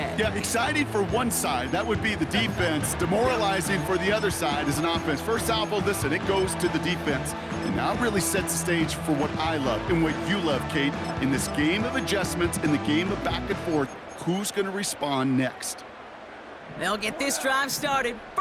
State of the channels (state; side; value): identical; both; correlation 1.00